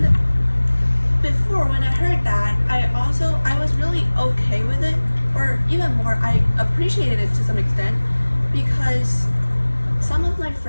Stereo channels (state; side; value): inverted; both; correlation -1.00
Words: before, when I heard that, I was really okay with it, or even more, I appreciated it to some extent because some of my